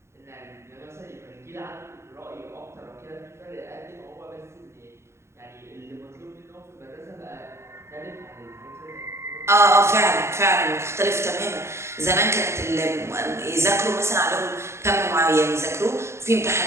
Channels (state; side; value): late; left; 0.13 ms